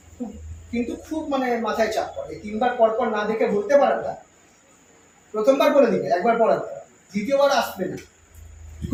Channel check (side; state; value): both; identical; correlation 1.00